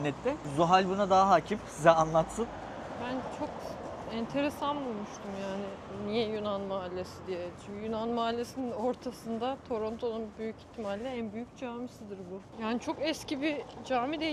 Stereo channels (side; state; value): both; identical; correlation 1.00